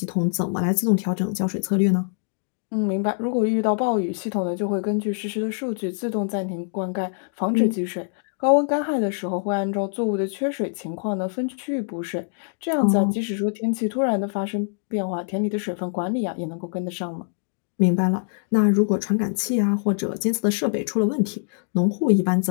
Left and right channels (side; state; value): right; silent; digital silence